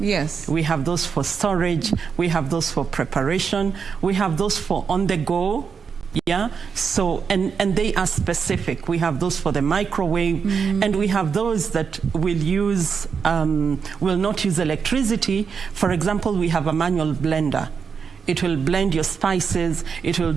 We have those for storage, we have those for preparation, we have those for on the go. Yeah, so, and they are specific. We have those for the microwave, and we have those that will use, will not use electricity. For example, we have a manual blender. It will blend your spices, it will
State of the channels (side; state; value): left; quieter; 6.1 dB